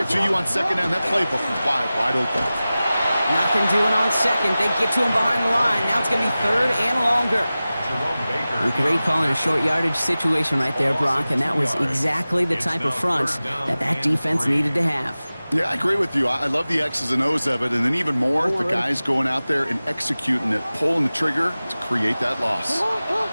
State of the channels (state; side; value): inverted; both; correlation -0.97